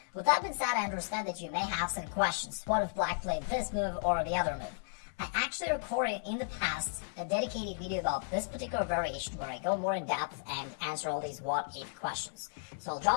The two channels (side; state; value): right; silent; 55 dB below the other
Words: With that being said, I understand that you may have some questions. What if black played this move or the other move? I actually recorded in the past a dedicated video about this particular variation where I go more in depth and answer all these what if questions. So I'll